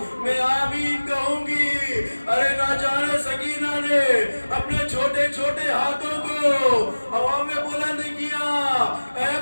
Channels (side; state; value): both; inverted; correlation -1.00